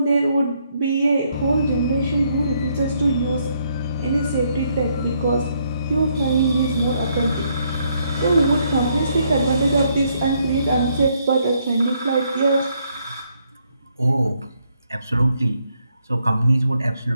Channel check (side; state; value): both; inverted; correlation -0.73